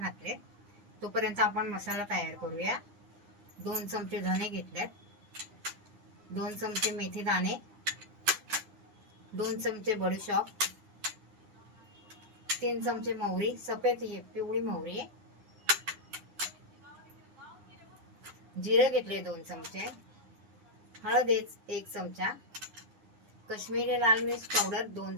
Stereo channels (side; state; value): left; late; 9.8 ms